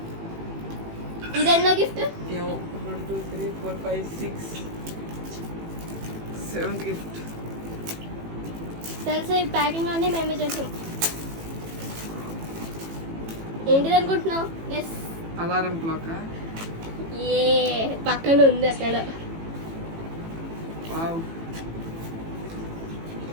ఇదెన్నో గిఫ్ట్? 1 2 3 4 5 6 7th gift. తెలుసా ఈ ప్యాకింగ్ అన్నీ మేమే చేసాం. ఏంటిది అనుకుంటున్నావు? Yes, alarm clock. ఏ పక్కన ఉంది అక్కడ. వావ్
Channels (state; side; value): late; left; 18 ms